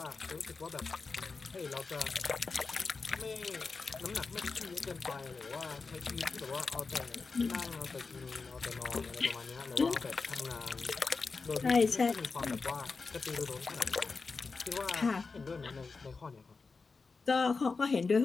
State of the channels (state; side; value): quieter; right; 4.4 dB